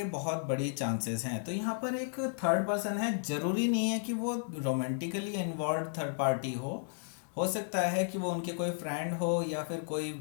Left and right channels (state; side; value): silent; right; digital silence